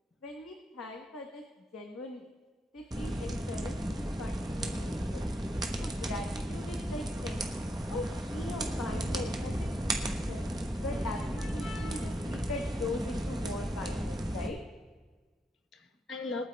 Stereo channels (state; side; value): normal; both; correlation 0.80